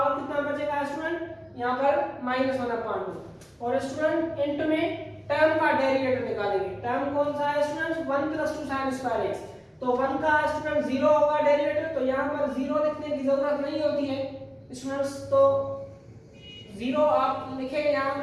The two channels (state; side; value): identical; both; correlation 1.00